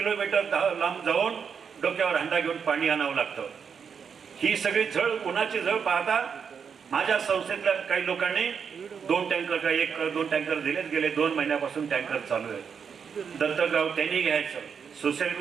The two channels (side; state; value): left; quieter; 6.6 dB